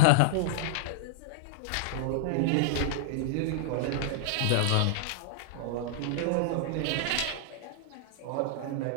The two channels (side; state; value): both; different; correlation -0.01